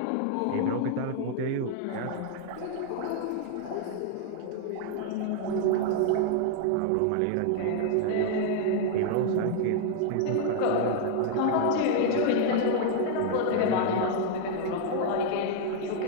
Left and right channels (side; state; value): both; different; correlation 0.00